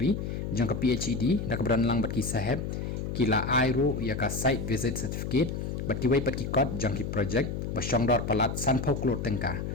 jang ke PHED dak beran lang bat ki saheb kila airu ya ka site visit certificate bat ki wai pat ki kot jang ki project basyongdor palat san phoklor tengka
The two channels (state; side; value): noise; left; hum, 4 dB below the sound